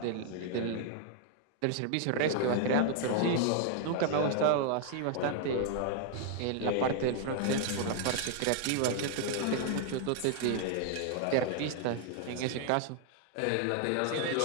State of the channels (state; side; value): different; both; correlation 0.00